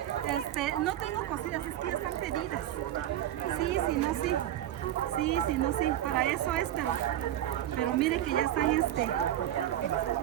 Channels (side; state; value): left; quieter; 12.3 dB